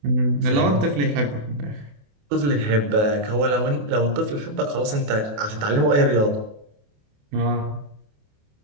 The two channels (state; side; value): late; left; 28 ms